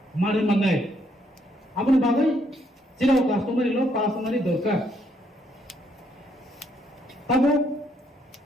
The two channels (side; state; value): both; normal; correlation 0.72